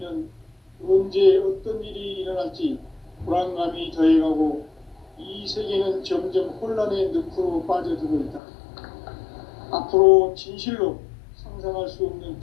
언제 어떤 일이 일어날지 불안감이 더해가고 이 세계는 점점 혼란의 늪으로 빠져들고 있다. 앞으로 진실로 상상할 수 없는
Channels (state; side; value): drops out; right; at 8.4 s